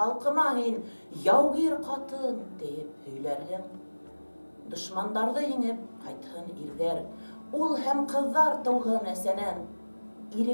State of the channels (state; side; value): inverted; both; correlation -1.00